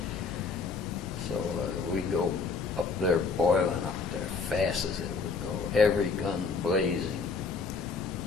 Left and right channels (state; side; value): quieter; right; 4.7 dB